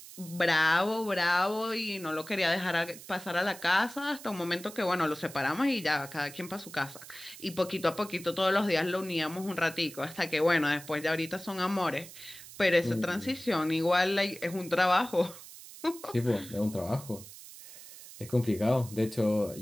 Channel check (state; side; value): noise; right; hiss, 16 dB below the sound